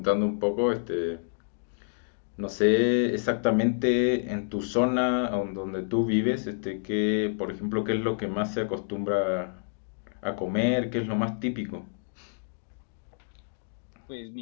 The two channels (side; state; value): right; silent; digital silence